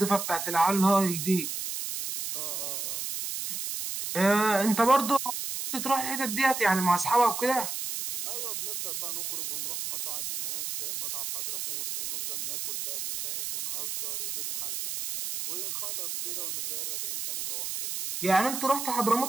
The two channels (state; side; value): noise; right; hiss, 4 dB below the sound